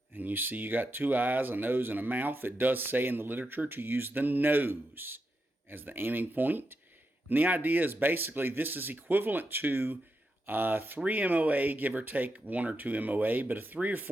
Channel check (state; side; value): normal; both; correlation 0.86